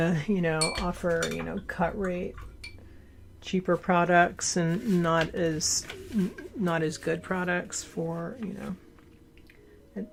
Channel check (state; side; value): identical; both; correlation 1.00